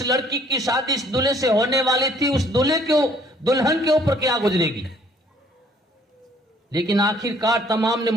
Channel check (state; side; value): normal; both; correlation 0.60